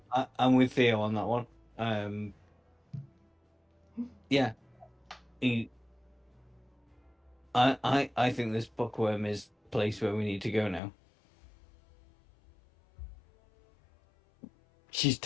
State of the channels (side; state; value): right; drops out; at 10.8 s